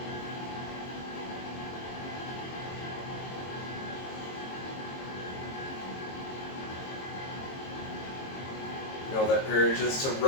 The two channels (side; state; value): right; late; 22 ms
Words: You know, that urge is to